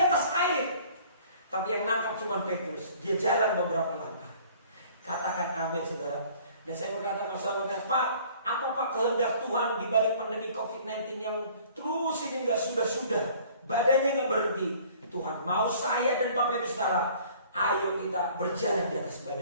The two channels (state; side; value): inverted; both; correlation -0.52